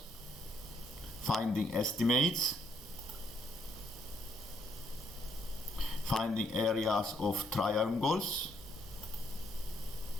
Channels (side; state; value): both; normal; correlation 0.72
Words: finding estimates, finding areas of triangles.